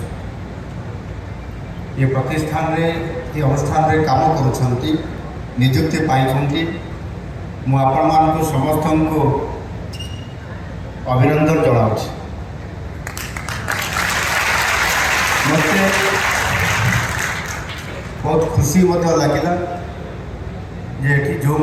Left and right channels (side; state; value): both; identical; correlation 1.00